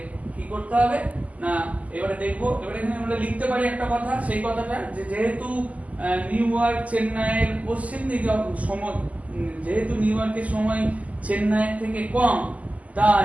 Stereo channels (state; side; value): late; left; 0.072 ms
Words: কি করতে হবে না, এবারে দেখবো। এবারে এখানে আমরা লিখতে পারি একটা কথা, সেই কথাটা যে যেহেতু নিউ ইয়র্ক চেন্নাইয়ের পশ্চিম দিকে সময়, যেহেতু নিউ ইয়র্কের সময় চেন্নাইয়ের থেকে কম,